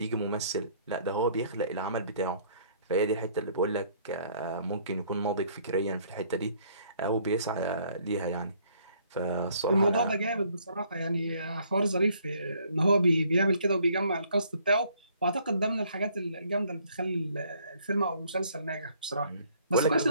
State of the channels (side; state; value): both; inverted; correlation -0.62